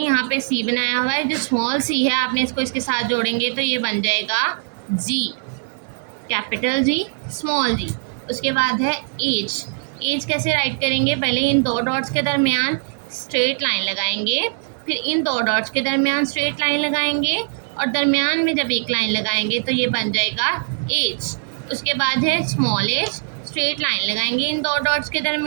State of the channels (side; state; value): left; silent; digital silence